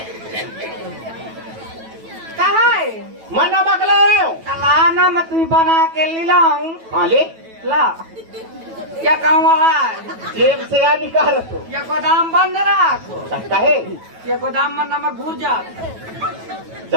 कहा है मैं नमक लाया हूँ लाना मैं तुम्हें बना के लाऊं हाँ ले ला क्या कहूँ वहाँ जेब से आ निकाल तो ये गोदाम बंद रखो कहे ये गोदाम में नमक घुर जाता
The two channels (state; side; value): late; left; 9.2 ms